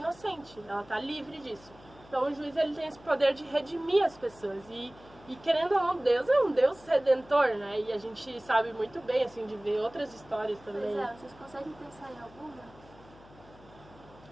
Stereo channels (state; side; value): noise; left; hum, 23 dB below the sound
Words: ela tá livre disso. Então, o juiz, ele tem esse poder de redimir as pessoas. E querendo ou não, Deus é um Deus redentor, né? E a gente sabe muito bem, assim, de ver outras histórias também. Pois vocês conseguem pensar em alguma?